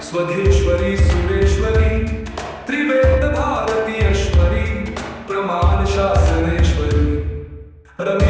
स्वधेश्वरी सुरेश्वरी त्रिवेद भारतीयश्वरी प्रमाण शासनेश्वरी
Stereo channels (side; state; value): both; identical; correlation 1.00